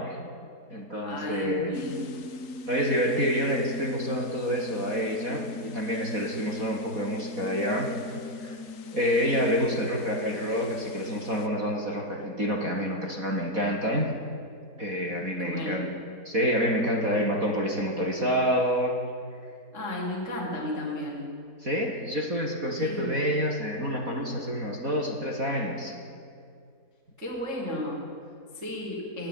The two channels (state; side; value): late; left; 4.1 ms